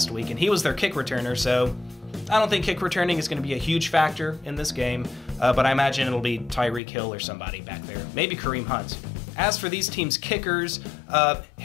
week, and he was their kick returner, so I don't think kick returning is going to be a huge factor in this game, but I imagine it'll be Tyreek Hill or somebody back there. Maybe Kareem Hunt. As for these teams' kickers,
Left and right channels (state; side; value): drops out; right; at 6.8 s